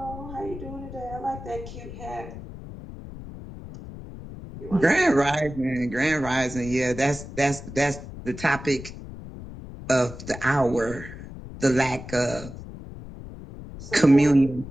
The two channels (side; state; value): left; noise; rumble, 13 dB below the sound